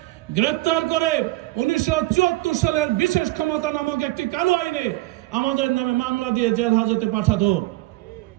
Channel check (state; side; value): quieter; left; 18.9 dB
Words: গ্রেপ্তার করে 1974 সালের বিশেষ ক্ষমতা নামক একটি কালো আইনে আমাদের নামে মামলা দিয়ে জেল হাজতে পাঠাতো।